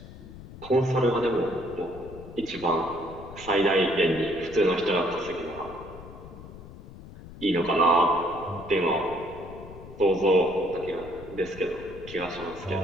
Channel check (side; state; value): left; noise; rumble, 16 dB below the sound